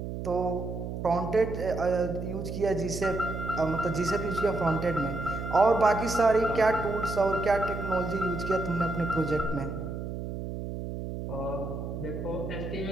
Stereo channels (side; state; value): right; noise; hum, 6 dB below the sound